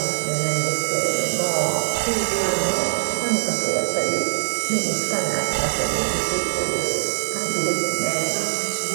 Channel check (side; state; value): left; silent; digital silence